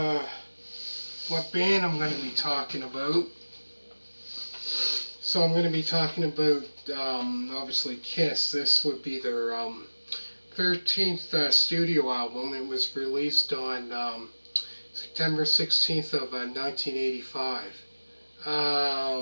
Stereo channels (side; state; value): both; inverted; correlation -1.00